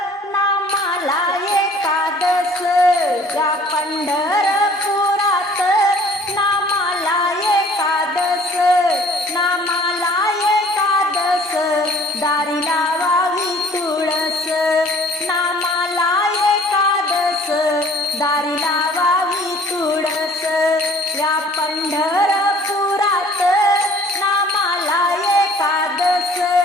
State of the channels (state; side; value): normal; both; correlation 0.53